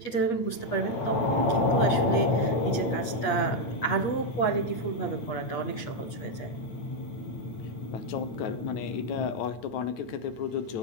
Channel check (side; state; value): right; late; 8.4 ms